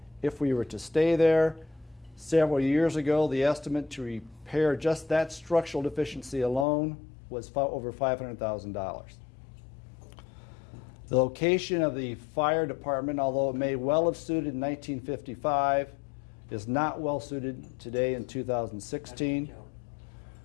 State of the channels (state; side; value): drops out; right; at 6.7 s